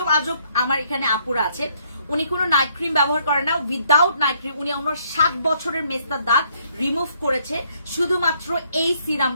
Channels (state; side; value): inverted; both; correlation -0.68